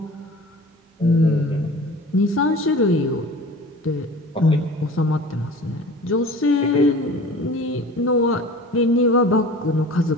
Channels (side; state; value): both; normal; correlation 0.41